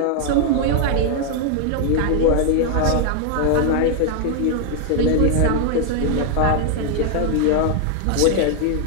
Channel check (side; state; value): both; different; correlation 0.00